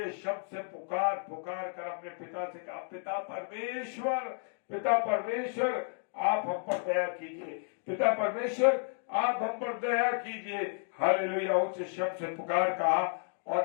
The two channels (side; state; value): right; silent; 56 dB below the other